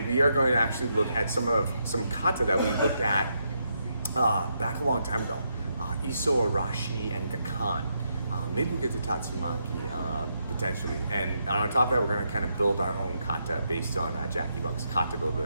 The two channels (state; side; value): inverted; both; correlation -0.80